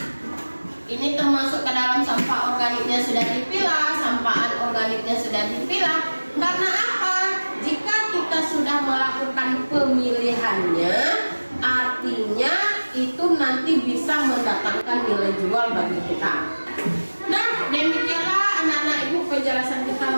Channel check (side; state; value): both; inverted; correlation -1.00